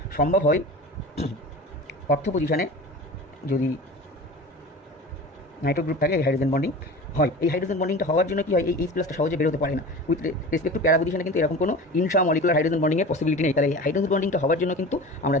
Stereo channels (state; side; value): normal; both; correlation 0.35